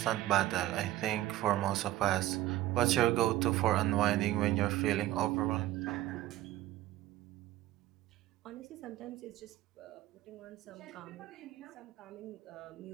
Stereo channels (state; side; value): quieter; left; 15.0 dB